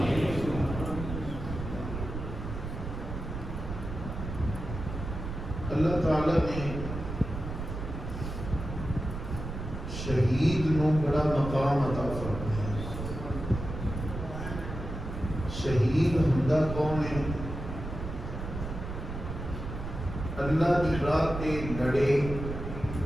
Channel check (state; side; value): noise; right; rumble, 7 dB below the sound